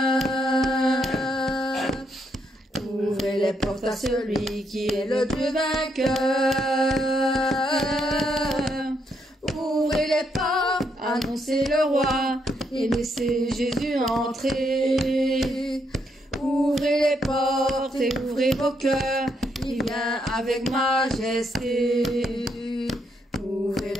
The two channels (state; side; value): normal; both; correlation 0.76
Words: Ouvrez les portes à celui qui est le Dieu vainqueur. Ouvrez les portes, annoncez le roi et laissez Jésus entrer. Ouvrez les portes et ouvrez vos cœurs, il vient avec majesté. Ouvrez